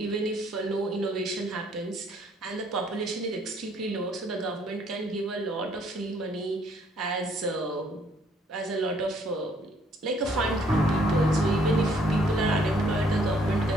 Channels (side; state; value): both; normal; correlation 0.65